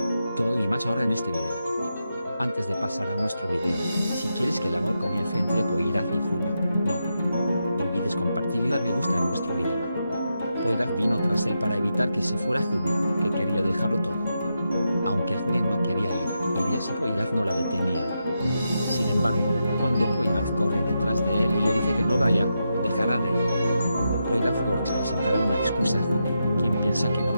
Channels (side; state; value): both; inverted; correlation -0.86